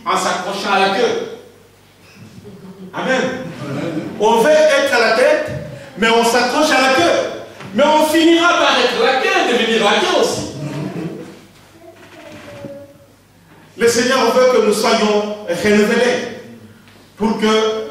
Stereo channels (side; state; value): both; identical; correlation 1.00